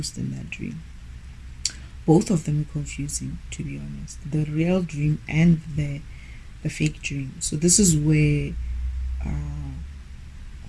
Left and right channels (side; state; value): both; identical; correlation 1.00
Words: in that dream. Both of them were confusing, to be honest. The real dream and the fake dream. So this is where